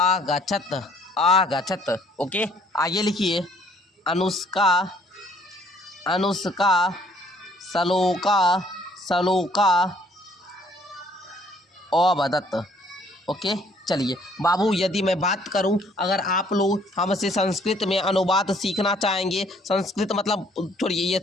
आगछत। ओके, आगे लिखिए अनुष्का अनुष्का सलोका सलोका अवदत। ओके, चलिए बाबू, यदि मैं बात करूं, अगर आप लोग हमसे संस्कृत में अनुवाद सीखना चाहेंगे, संस्कृत मतलब छोड़िए ये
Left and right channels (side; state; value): both; normal; correlation 0.62